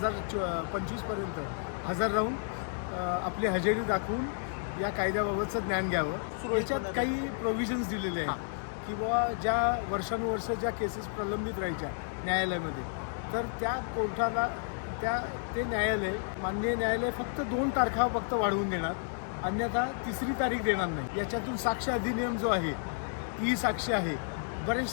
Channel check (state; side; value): silent; right; digital silence